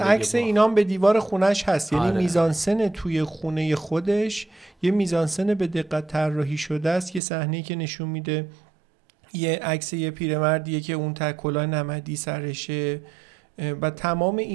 عکس باخ. اینام به دیوار خونش هست. یعنی آره. میزانسن توی خونه خودش یه میزانسن به دقت طراحی شده است. یه صحنه‌ای که نشون میده یه عکس یه پیرمردیه که اون کلاه نمدی سرشه و تمام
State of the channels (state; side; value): drops out; left; at 7.2 s